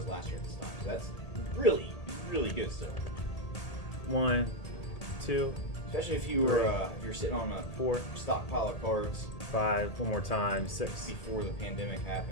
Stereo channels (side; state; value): right; late; 1.8 ms